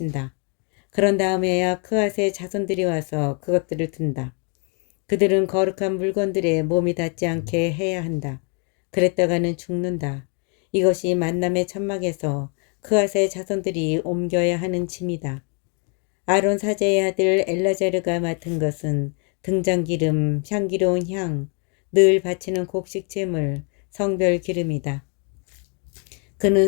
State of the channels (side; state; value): right; quieter; 38.6 dB